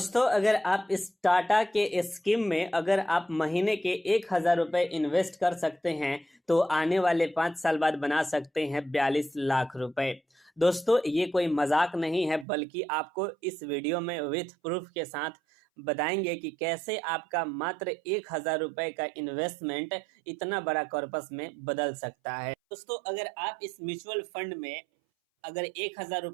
अगर आप इस टाटा के स्कीम में अगर आप महीने के 1,000 रुपए इन्वेस्ट कर सकते हैं तो आने वाले 5 साल बाद बना सकते हैं 42 लाख रुपए। दोस्तों, ये कोई मजाक नहीं है, बल्कि आपको इस वीडियो में विथ प्रूफ के साथ बताएंगे कि कैसे आपका मात्र 1,000 रुपए का इन्वेस्टमेंट इतना बड़ा कॉर्पस में बदल सकता है। दोस्तों, अगर आप इस म्यूचुअल फंड में अगर 1,000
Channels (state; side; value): drops out; left; at 12.5 s